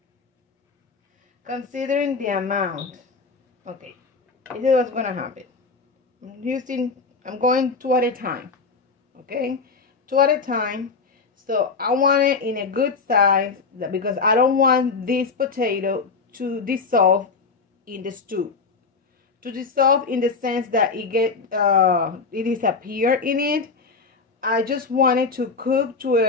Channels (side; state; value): right; quieter; 4.6 dB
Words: Considering the amount, okay, this is what's gonna happen. I'm going 2 at a time, okay, 2 at a time. So I want it in a good size because I don't want this potato to dissolve in the stew. To dissolve in the sense that it disappear in it. I just want it to cook to